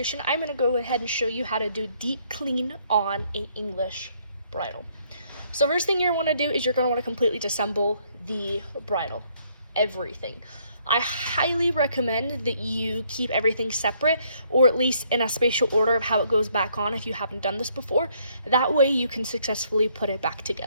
I'm going to go ahead and show you how to do deep clean on an English bridle. So first thing you're going to want to do is you're going to want to completely disassemble the bridle, everything. I highly recommend that you keep everything separate, or at least in a spatial order of how it goes back on if you haven't done this before. That way you can successfully put it back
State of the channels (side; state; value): both; inverted; correlation -0.68